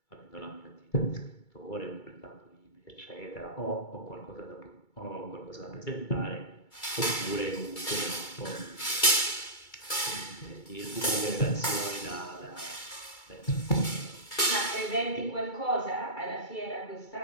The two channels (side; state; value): right; late; 2.3 ms